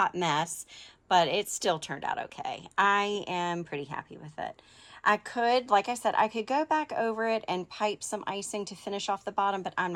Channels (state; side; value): identical; both; correlation 1.00